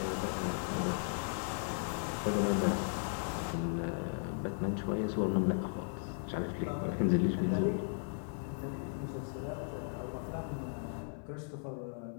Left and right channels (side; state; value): right; silent; 53 dB below the other